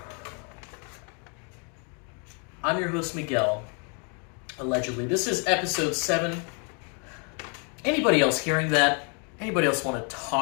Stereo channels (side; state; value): right; quieter; 37.7 dB